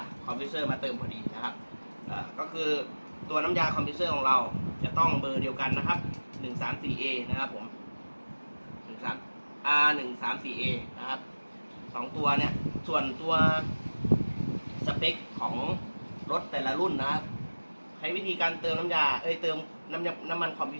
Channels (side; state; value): both; inverted; correlation -1.00